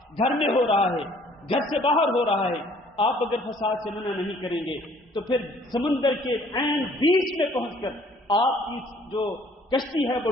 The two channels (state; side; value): normal; both; correlation 0.58